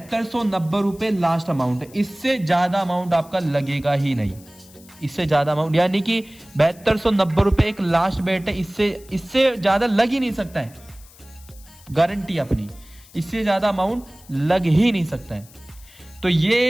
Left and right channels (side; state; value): left; noise; hiss, 24 dB below the sound